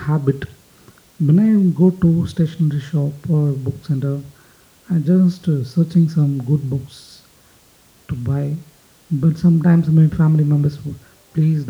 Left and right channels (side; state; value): both; identical; correlation 1.00